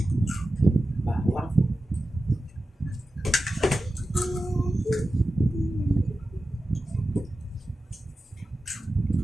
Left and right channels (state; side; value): normal; both; correlation 0.93